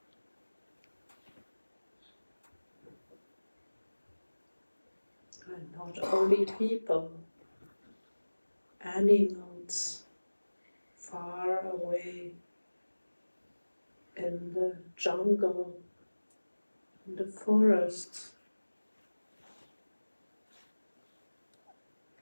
And not only people, animals far away in the jungle, in the forests,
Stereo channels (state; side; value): inverted; both; correlation -1.00